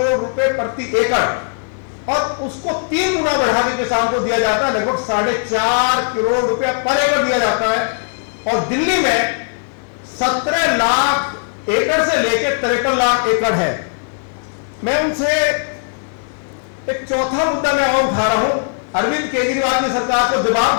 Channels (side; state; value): right; silent; digital silence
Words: रुपए प्रति एकड़, और उसको 3 गुना बढ़ा के किसान को दिया जाता है, लगभग 4.5 करोड़ रुपया पर एकड़ दिया जाता है। और दिल्ली में 17 लाख एकड़ से लेकर 53 लाख एकड़ है। मैं उनसे एक चौथा मुद्दा मैं और उठा रहा हूं, अरविंद केजरीवाल की सरकार को